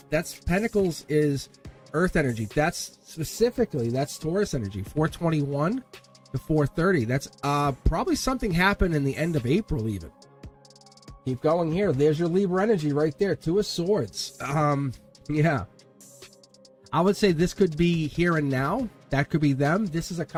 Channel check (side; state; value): both; identical; correlation 1.00